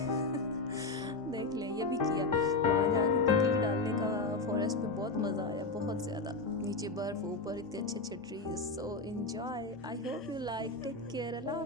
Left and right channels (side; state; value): right; quieter; 3.5 dB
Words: देख लें ये भी किया, वहाँ जाके किकली डालने का फॉरेस्ट में बहुत मज़ा आया, बहुत ज़्यादा। नीचे बर्फ़, ऊपर इतने अच्छे अच्छे trees. So enjoy. I hope you like. Take care. अल्लाह